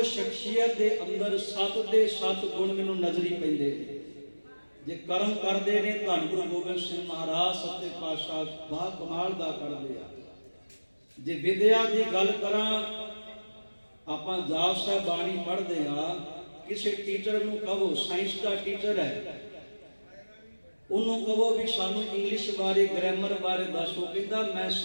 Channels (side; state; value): both; inverted; correlation -1.00